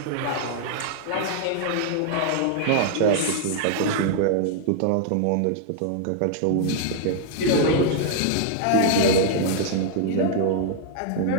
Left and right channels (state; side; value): different; both; correlation 0.00